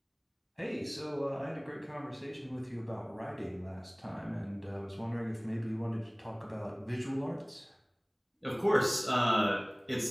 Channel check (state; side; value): identical; both; correlation 1.00